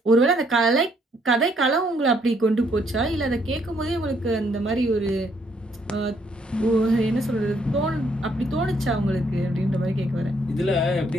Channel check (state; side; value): normal; both; correlation 0.70